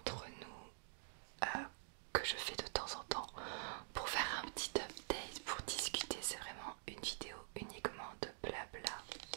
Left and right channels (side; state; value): left; silent; digital silence